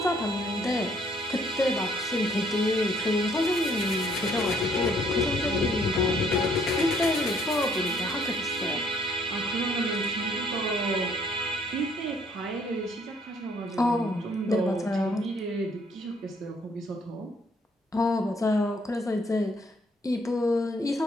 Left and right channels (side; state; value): both; normal; correlation 0.65